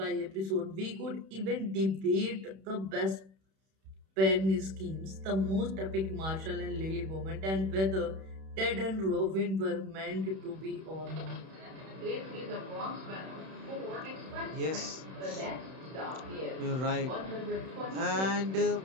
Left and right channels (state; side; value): late; left; 31 ms